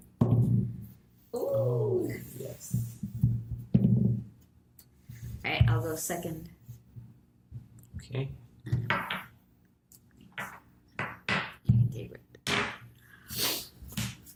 Ooh. Oh, yes. Alright, I'll go second. Okay.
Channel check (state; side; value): identical; both; correlation 1.00